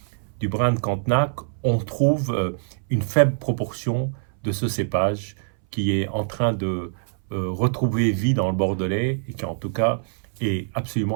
du Bran de Cantenac, on trouve une faible proportion de ce cépage qui est en train de retrouver vie dans le Bordelais, et qui en tout cas est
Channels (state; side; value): silent; left; 61 dB below the other